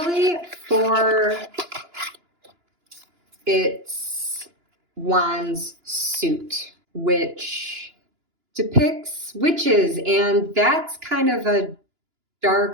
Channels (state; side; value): late; left; 2.9 ms